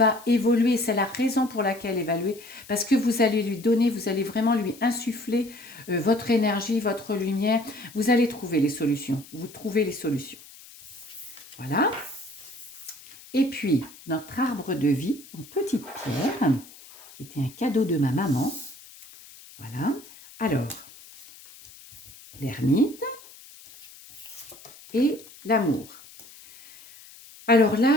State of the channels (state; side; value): noise; left; hiss, 20 dB below the sound